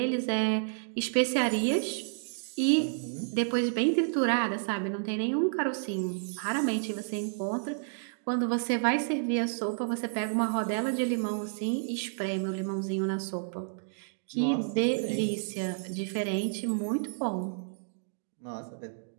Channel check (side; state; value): left; silent; digital silence